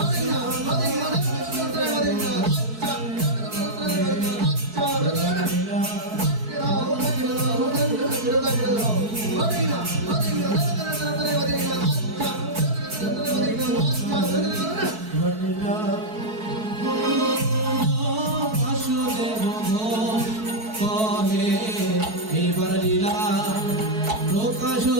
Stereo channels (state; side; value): late; left; 4.6 ms